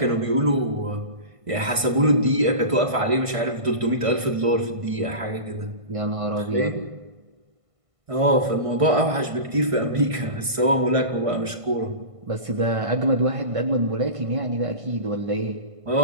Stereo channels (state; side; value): late; left; 1.5 ms